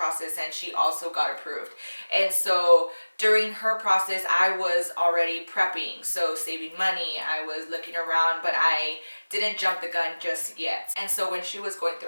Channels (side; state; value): both; inverted; correlation -1.00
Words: and she also got approved. And so during her process, I was already prepping, so saving money. I was looking around, but I didn't jump the gun just yet. And so when she was going